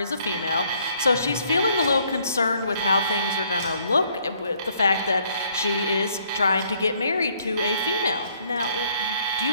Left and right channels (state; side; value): inverted; both; correlation -0.66